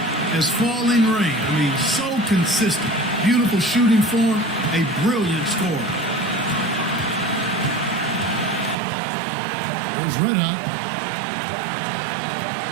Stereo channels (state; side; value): drops out; left; at 8.8 s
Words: as falling rain. I mean, so consistent. Beautiful shooting form, a brilliant scorer. There's Red Hot.